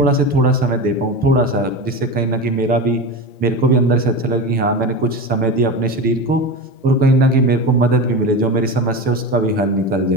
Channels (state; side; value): normal; both; correlation 0.25